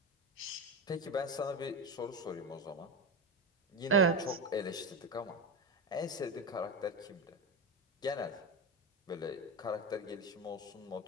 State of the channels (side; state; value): both; normal; correlation 0.18